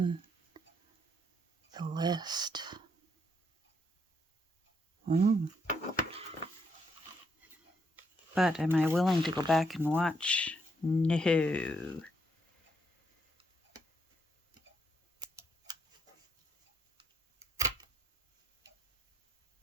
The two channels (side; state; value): both; normal; correlation 0.75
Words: the list. But am I willing to go back and watch? No.